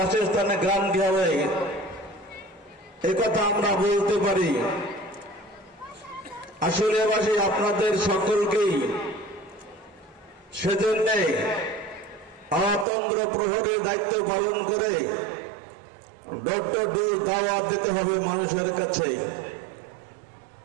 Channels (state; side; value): drops out; left; at 12.9 s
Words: গ্রান্টি হবে, একথা আমরা বলতে পারি। আসলে আপনাদের সকলকেই সেজন্য অতন্ত্র প্রহরীর দায়িত্ব পালন করে ডক্টর ডোজ দাওয়াত দিতে হবে মানুষের কাছে।